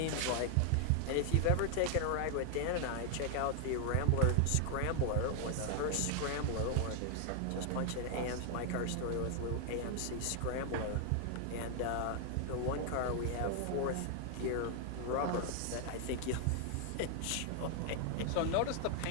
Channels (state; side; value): different; both; correlation 0.00